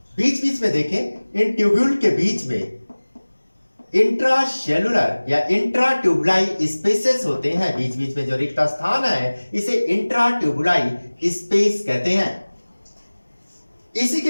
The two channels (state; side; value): inverted; both; correlation -1.00